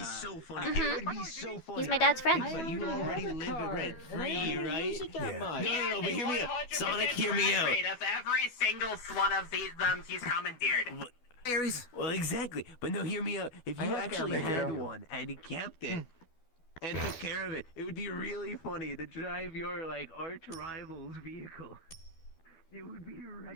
funny. It would be so funny. He's my dad's friend. But you already live it rent free, right? No, but hear me out. Sonic, hear me out. Of every single one of these he's commandeered. Well, exactly. But no, hear me out. If you actually had one and you kept it and took care of it, it would be really funny to drive your like arch rival's vehicle. It would be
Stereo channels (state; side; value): late; right; 12 ms